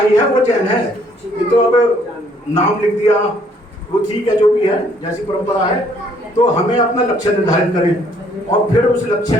है वो जैन है। ये तो अब नाम लिख दिया, वो ठीक है, जो भी है जैसी परंपरा है। तो हमें अपना लक्ष्य निर्धारित करें और फिर उस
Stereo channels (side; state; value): both; normal; correlation 0.64